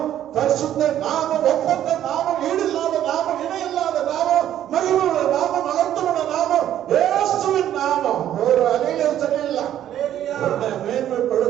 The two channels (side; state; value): left; quieter; 11.4 dB